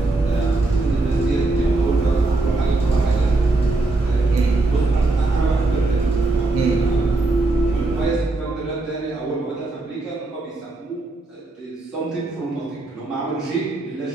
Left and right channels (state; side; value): quieter; left; 3.1 dB